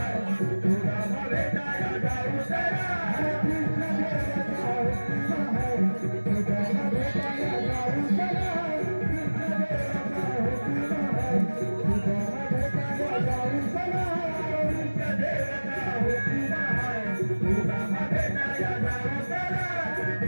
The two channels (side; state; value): both; inverted; correlation -1.00